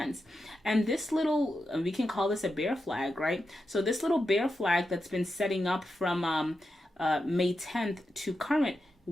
And this little, we can call this a bear flag, right? So this little bear flag that's been setting up from May 10th to current,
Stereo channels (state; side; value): normal; both; correlation 0.88